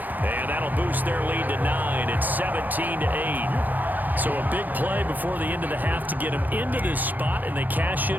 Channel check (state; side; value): late; left; 0.084 ms